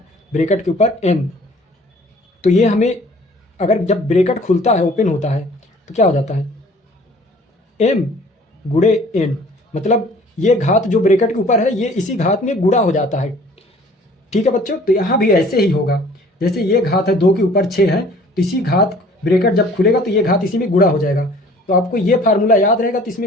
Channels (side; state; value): both; normal; correlation 0.52